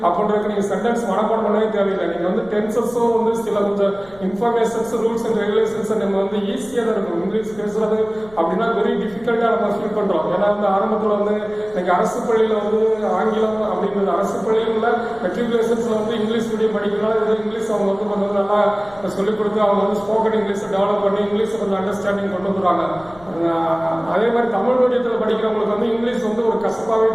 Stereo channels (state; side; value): noise; left; rumble, 24 dB below the sound